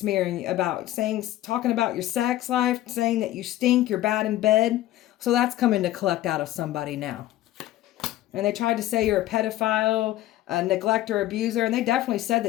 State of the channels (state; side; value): quieter; right; 14.8 dB